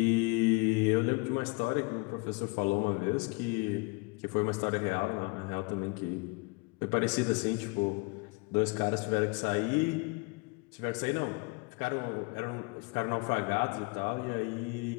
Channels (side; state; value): right; quieter; 28.8 dB